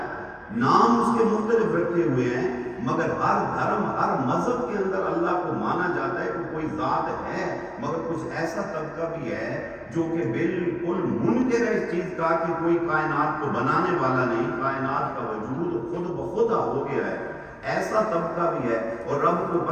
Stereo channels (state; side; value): identical; both; correlation 1.00